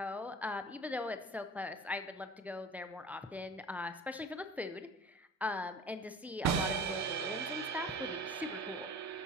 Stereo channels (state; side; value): normal; both; correlation 0.41